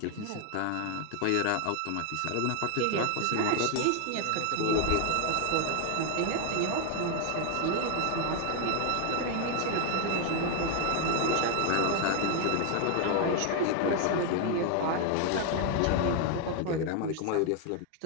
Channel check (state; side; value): different; both; correlation 0.00